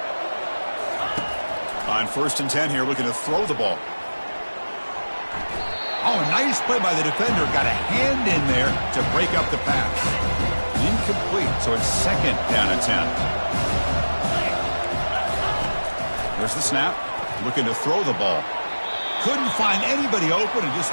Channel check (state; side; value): inverted; both; correlation -1.00